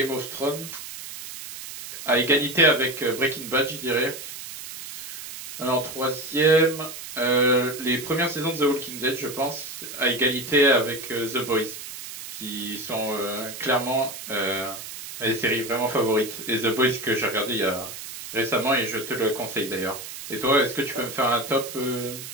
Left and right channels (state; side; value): noise; right; hiss, 11 dB below the sound